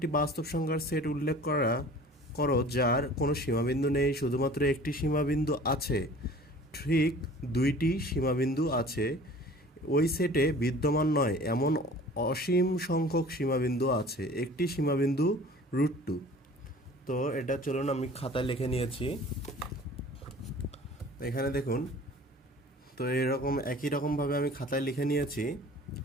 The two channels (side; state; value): both; normal; correlation 0.46